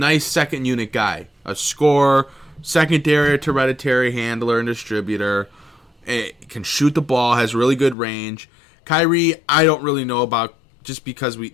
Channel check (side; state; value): right; drops out; at 8.0 s